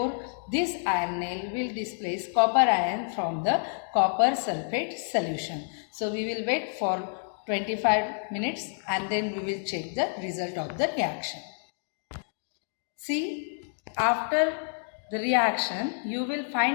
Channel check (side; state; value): right; silent; digital silence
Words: this iron nail will displace copper ion from the copper sulfate solution. So we will wait for 25 minutes and then we will check the result of the reaction. See, after the reaction you will